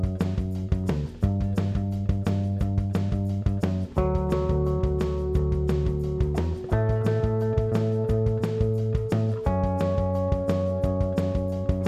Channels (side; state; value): both; identical; correlation 1.00